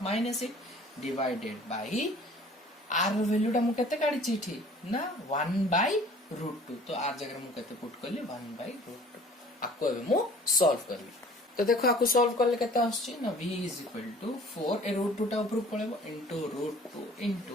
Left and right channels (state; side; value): normal; both; correlation 0.50